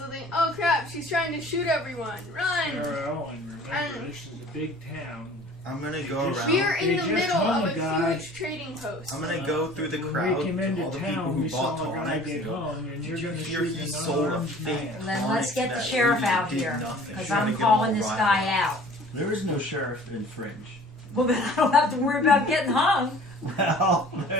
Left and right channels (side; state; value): both; normal; correlation 0.48